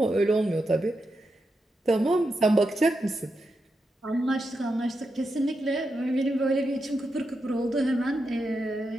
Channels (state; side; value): normal; both; correlation 0.86